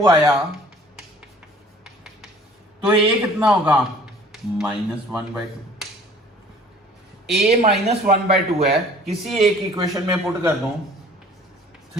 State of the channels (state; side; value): normal; both; correlation 0.51